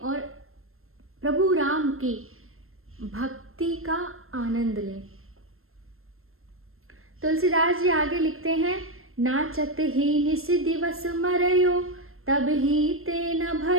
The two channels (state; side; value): late; left; 0.62 ms